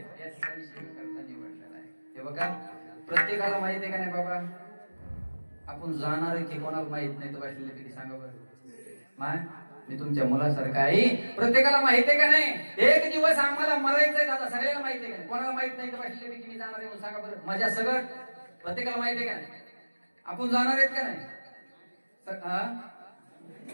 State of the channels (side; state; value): both; inverted; correlation -1.00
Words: या ठिकाणी सेवेकरता निवडलेला आहे. हे बघा, प्रत्येकाला माहित आहे का नाही बाबा? आपण जाणार आहे की कोणाला माहित नाही तर बसलेले किती सांगा बरं. माय मी तुमच्या मुलासारखं आहे. प्रत्येकाला माहित आहे का नाही? एक दिवस आम्हाला मरायचंय दादा, सगळ्याला माहित आहे का नाही? कोणाला माहित नाही तर बसलेले की मी जाणार आहे म्हणून सांगा बरं. माझ्या सगळं प्रत्येकाला माहित आहे का नाही? आपण जाणार आहेत का नाही?